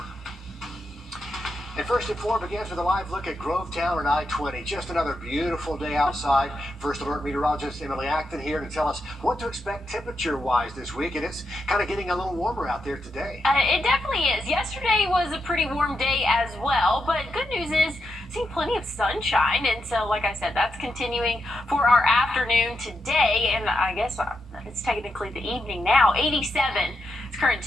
And First at 4 begins with a live look at Grovetown and I-20. Just another beautiful day outside. First Alert meteorologist Emily Acton here to tell us what to expect temperature-wise this week. And it's kind of getting a little warmer out there today. It definitely is. Yesterday was a pretty warm day as well, but good news is seeing plenty of sunshine. And so, like I said, that's continuing for our afternoon today. And I guess it's technically the evening now. 87 is current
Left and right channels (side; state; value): both; normal; correlation 0.84